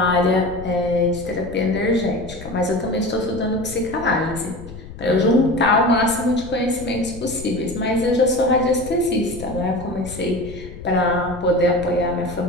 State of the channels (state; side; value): noise; left; rumble, 14 dB below the sound